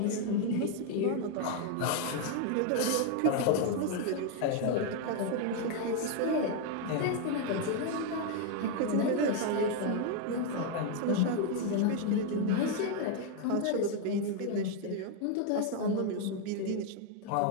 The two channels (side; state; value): both; different; correlation 0.01